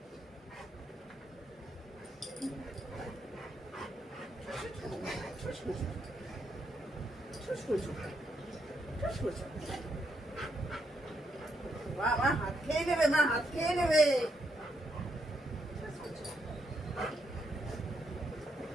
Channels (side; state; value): both; normal; correlation 0.77